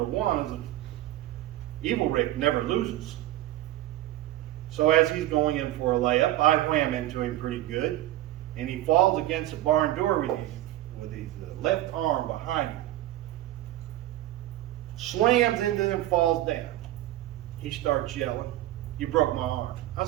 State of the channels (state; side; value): quieter; left; 14.7 dB